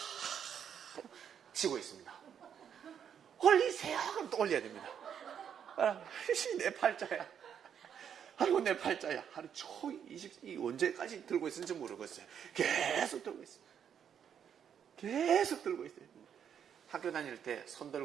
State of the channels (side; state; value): left; quieter; 8.3 dB